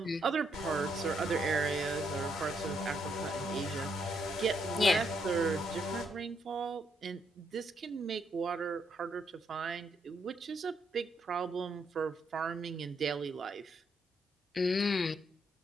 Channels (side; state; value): both; normal; correlation 0.75